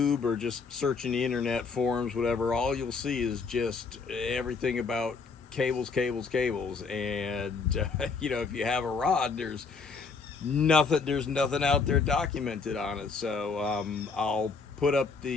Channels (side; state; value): right; quieter; 4.7 dB